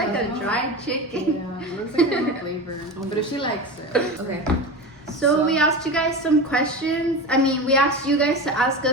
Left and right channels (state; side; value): normal; both; correlation 0.26